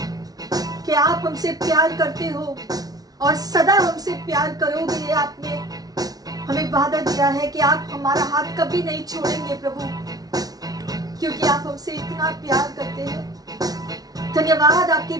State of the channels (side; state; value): left; late; 0.18 ms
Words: कि आप हमसे प्यार करते हो और सदा हमसे प्यार करोगे। ये आपने हमें वादा दिया है कि आप हमारा हाथ कभी नहीं छोड़ेंगे प्रभु, क्योंकि आप हमसे इतना प्यार करते हैं। धन्यवाद आपके